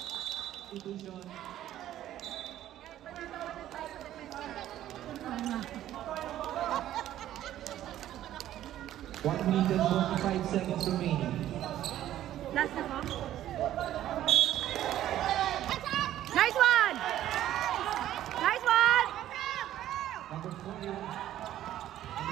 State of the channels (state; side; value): quieter; left; 12.6 dB